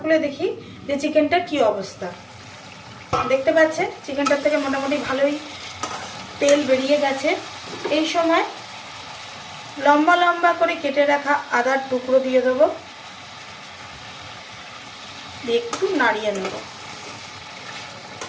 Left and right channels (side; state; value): both; identical; correlation 1.00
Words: খুলে দেখি যে চিকেনটার কি অবস্থা। দেখতে পাচ্ছেন চিকেনটার থেকে মোটামুটি ভালোই তেল বেরিয়ে গেছে। এই সময় লম্বা লম্বা করে কেটে রাখা আদার টুকরো দিয়ে দেবো, দিয়ে একটু নাড়িয়ে নেব।